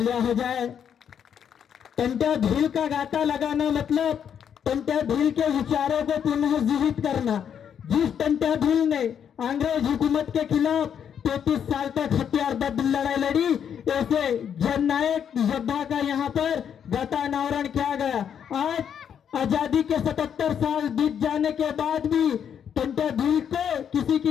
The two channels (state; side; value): quieter; right; 8.3 dB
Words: हो जाए। टंट्या भील का गाता लगाना मतलब टंट्या भील के विचारों को पुनः जीवित करना। जिस टंट्या भील ने अंग्रेज हुकूमत के खिलाफ 33 साल तक हथियारबद्ध लड़ाई लड़ी, ऐसे जननायक योद्धा का यहाँ पर गाता अनावरण किया गया। आज आजादी के 77 साल बीत जाने के बाद भी टंट्या भील को किसी